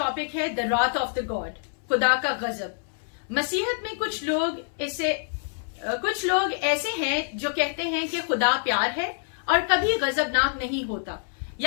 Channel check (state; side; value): silent; right; 61 dB below the other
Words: है द रॉथ ऑफ द गॉड, खुदा का गजब। मसीहत में कुछ लोग ऐसे हैं जो कहते हैं कि खुदा प्यार है और कभी गजबनाक नहीं होता